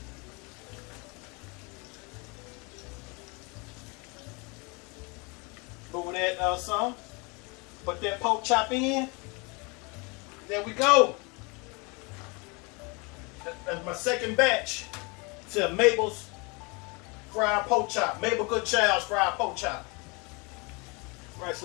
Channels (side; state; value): right; quieter; 29.3 dB